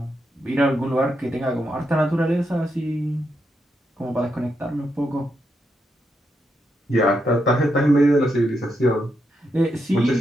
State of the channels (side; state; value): both; normal; correlation 0.82